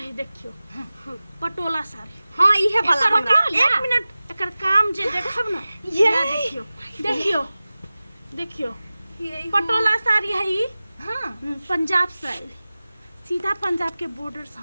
देखियो पटोला साड़ी हां इहे वाला एकर हमरा काम- एक मिनट एकर काम जे देखब ना ये ना देखियो पटोला साड़ी है ई हां पंजाब से आयल सीधा पंजाब के बॉर्डर से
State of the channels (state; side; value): inverted; both; correlation -0.97